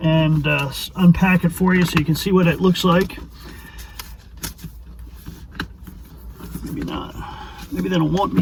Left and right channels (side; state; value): both; identical; correlation 1.00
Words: and unpack it for you so you can see what it looks like. Maybe not. Maybe they don't want